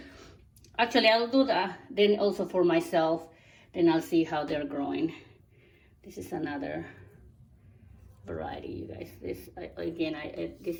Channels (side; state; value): both; identical; correlation 1.00